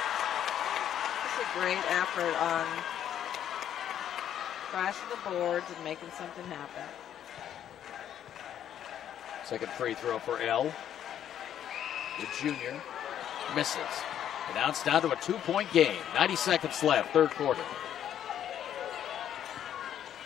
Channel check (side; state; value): right; quieter; 10.3 dB